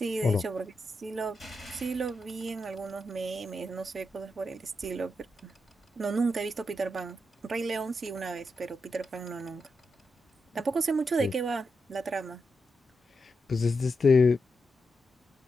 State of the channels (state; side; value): normal; both; correlation 0.86